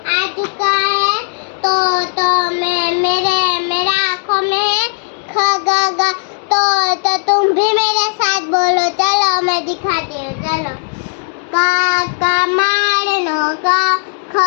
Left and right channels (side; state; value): right; silent; digital silence